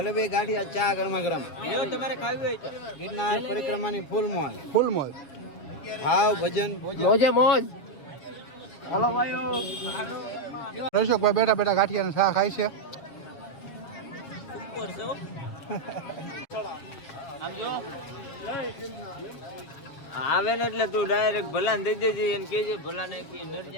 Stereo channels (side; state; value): right; late; 7.0 ms